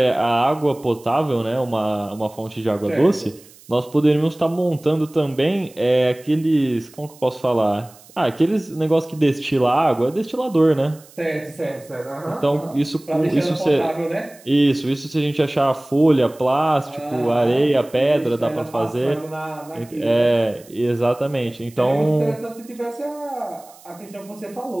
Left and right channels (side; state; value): right; noise; hiss, 24 dB below the sound